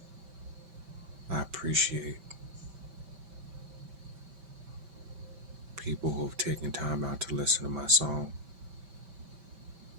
I appreciate people who have taken time out to listen to my song.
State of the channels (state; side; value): late; left; 5.2 ms